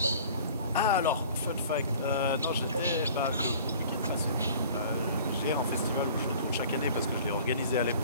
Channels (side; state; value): both; inverted; correlation -0.47